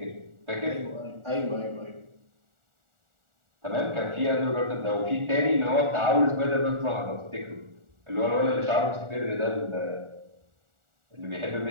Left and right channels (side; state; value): left; late; 1.4 ms